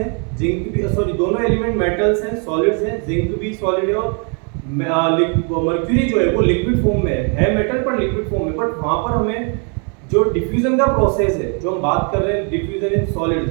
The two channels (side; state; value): left; quieter; 38.5 dB